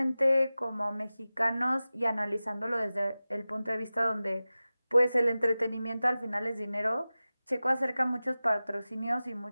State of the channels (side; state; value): both; inverted; correlation -0.96